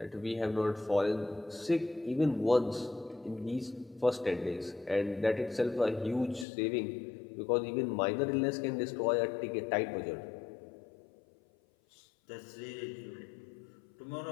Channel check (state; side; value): drops out; right; at 6.5 s